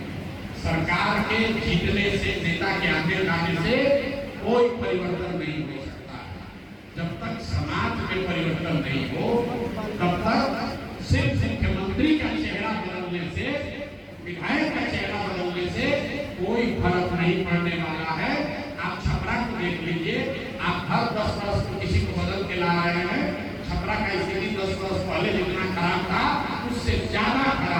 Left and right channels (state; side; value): identical; both; correlation 1.00